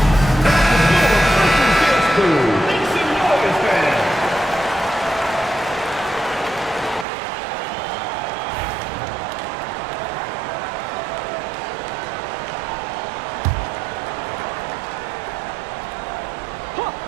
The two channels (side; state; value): left; drops out; at 7.1 s